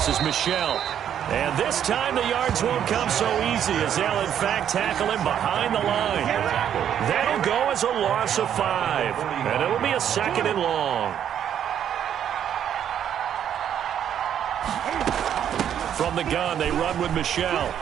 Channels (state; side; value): quieter; left; 9.5 dB